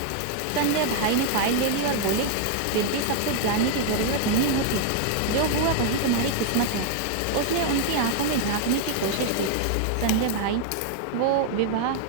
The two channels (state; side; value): different; both; correlation 0.00